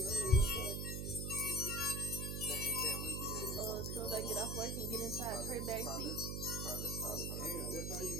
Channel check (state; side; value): noise; right; hum, 2 dB below the sound